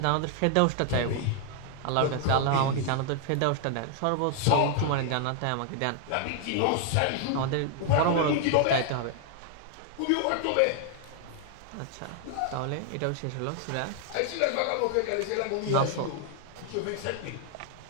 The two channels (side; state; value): both; different; correlation 0.00